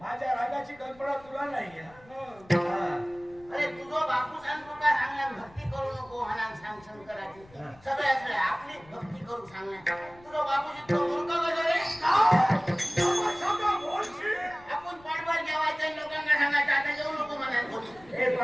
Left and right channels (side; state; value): left; noise; rumble, 25 dB below the sound